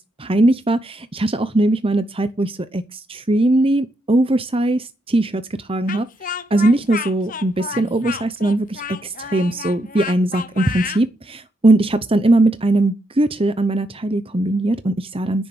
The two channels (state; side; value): normal; both; correlation 0.79